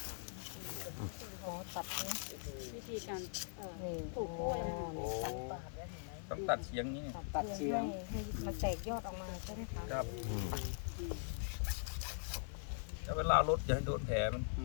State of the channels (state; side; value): silent; right; 50 dB below the other